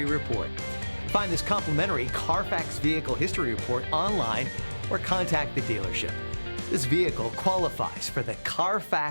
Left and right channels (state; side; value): inverted; both; correlation -1.00